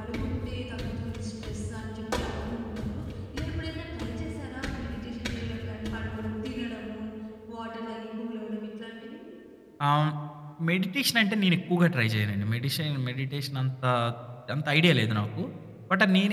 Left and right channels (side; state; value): both; identical; correlation 1.00